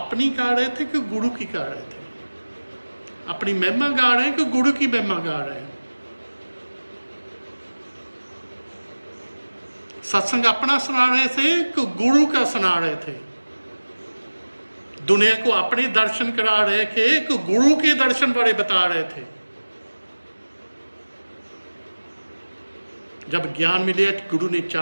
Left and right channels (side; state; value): both; inverted; correlation -1.00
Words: गा रहे थे कि गुरु की गा रहे थे? अपनी महिमा गा रहे हैं कि गुरु की महिमा गा रहे हैं? सत्संग अपना सुना रहे थे कि गुरु का सुना रहे थे? दुनिया को अपने दर्शन करा रहे थे कि गुरु के दर्शन बारे बता रहे थे? जब ज्ञान मिले गुरु ने